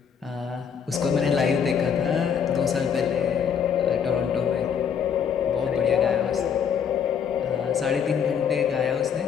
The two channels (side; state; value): right; quieter; 7.5 dB